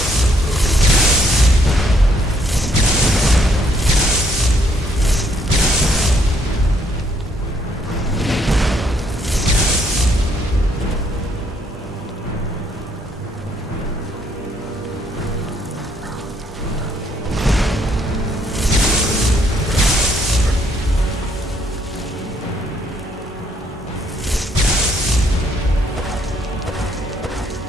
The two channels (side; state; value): both; normal; correlation 0.68